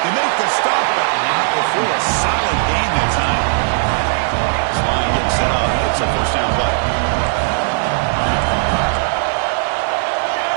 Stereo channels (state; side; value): silent; left; digital silence